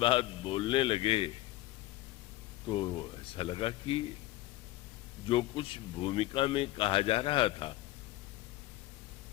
बोलने लगे तो ऐसा लगा कि जो कुछ भूमिका में कहा जा रहा था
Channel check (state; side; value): quieter; right; 16.7 dB